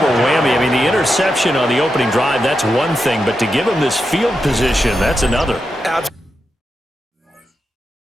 whammy. I mean, the interception on the opening drive, that's one thing, but to give him this field position, that's another.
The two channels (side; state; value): both; normal; correlation 0.87